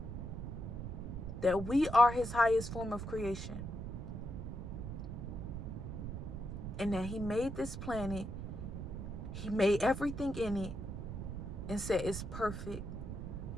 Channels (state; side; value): noise; right; rumble, 6 dB below the sound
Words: That we are his highest form of creation. And that he made this planet, he made everything in it, and said it's perfect.